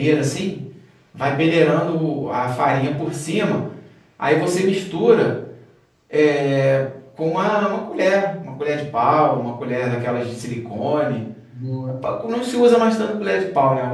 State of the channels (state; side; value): identical; both; correlation 1.00